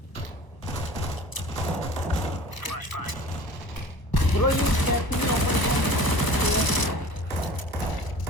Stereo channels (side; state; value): right; late; 1.0 ms